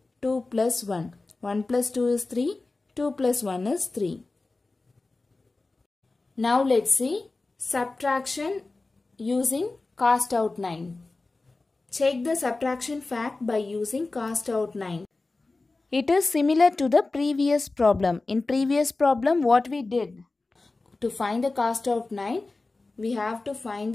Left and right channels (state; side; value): quieter; right; 3.4 dB